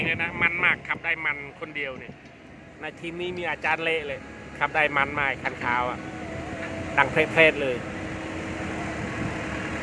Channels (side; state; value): both; identical; correlation 1.00